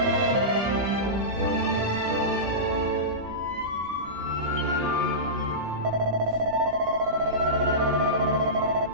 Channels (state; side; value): late; left; 16 ms